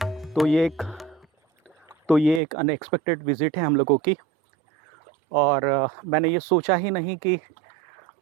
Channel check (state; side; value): drops out; left; at 2.4 s